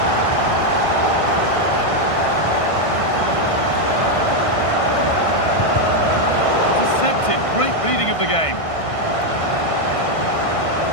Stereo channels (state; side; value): late; right; 1.6 ms